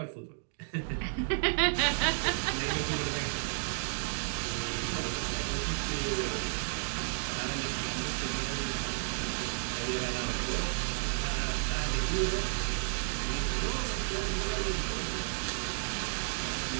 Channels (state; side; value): silent; left; digital silence